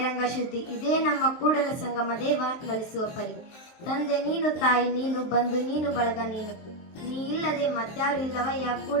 ಶುದ್ಧಿ, ಇದೇ ನಮ್ಮ ಕೂಡಲ ಸಂಗಮ ದೇವ ನಲಿಸುವ ಪರಿ. ತಂದೆ ನೀನು, ತಾಯಿ ನೀನು, ಬಂಧು ನೀನು, ಬಳಗ ನೀನು. ನೀ ಇಲ್ಲದೆ ಮತ್ಯಾರು ಇಲ್ಲವಯ್ಯ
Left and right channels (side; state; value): right; late; 23 ms